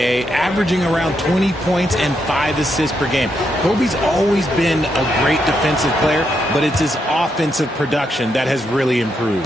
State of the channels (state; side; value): normal; both; correlation 0.80